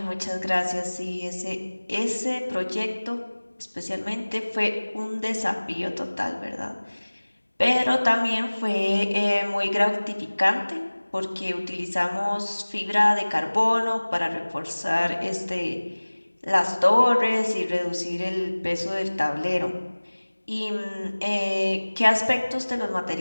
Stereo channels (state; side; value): inverted; both; correlation -1.00